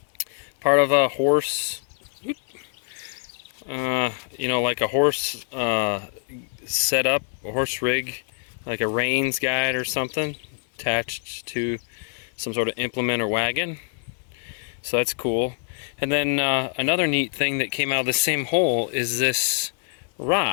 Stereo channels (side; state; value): right; silent; 59 dB below the other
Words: part of a horse, you know, like a horse setup, a horse rig, like a reins guide or something, attached to some sort of implement or wagon. So that's cool. And then another neat thing that came out of the same hole is this